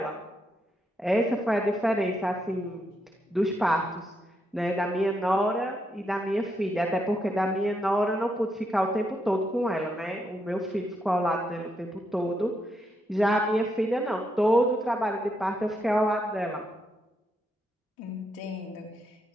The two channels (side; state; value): both; normal; correlation 0.80